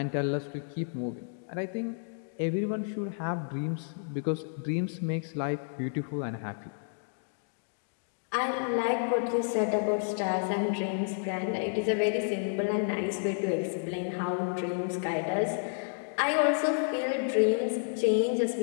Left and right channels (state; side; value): silent; right; digital silence